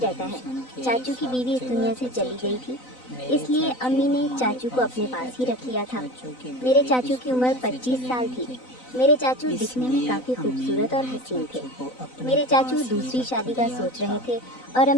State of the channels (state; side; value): late; right; 4.0 ms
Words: ہے۔ چاچو کی بیوی اس دنیا سے چلی گئی تھی، اس لیے امی نے چاچو کو اپنے پاس ہی رکھ لیا تھا۔ میرے چاچو کی عمر 25 سال تھی۔ میرے چاچو دکھنے میں کافی خوبصورت اور حسین تھے۔ میرے چاچو دوسری شادی کا سوچ رہے تھے اور